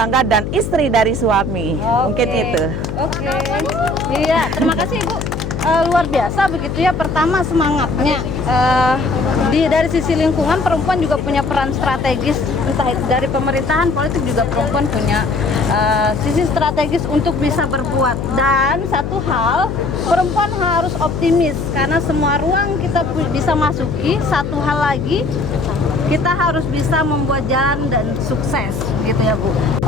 dan istri dari suami. Mungkin itu. Iya, terima kasih Ibu. Luar biasa begitu ya. Pertama semangatnya dari sisi lingkungan, perempuan juga punya peran strategis, entah itu dari pemerintahan, politik juga perempuan punya sisi strategis untuk bisa berbuat. Dan satu hal, perempuan harus optimis karena semua ruang kita bisa masuki. Satu hal lagi, kita harus bisa membuat jalan dan sukses gitu ya Bu.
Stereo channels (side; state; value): left; noise; hum, 5 dB below the sound